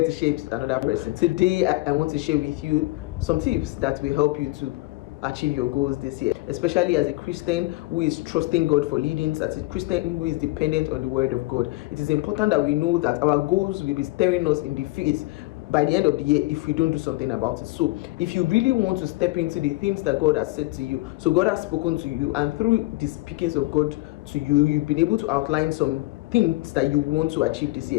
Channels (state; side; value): quieter; right; 21.4 dB